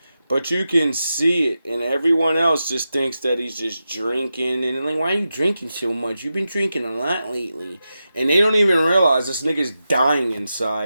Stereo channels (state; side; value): inverted; both; correlation -0.90